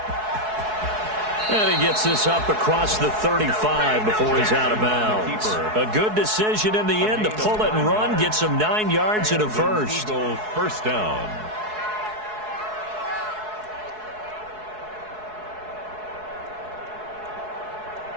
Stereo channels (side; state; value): left; late; 4.7 ms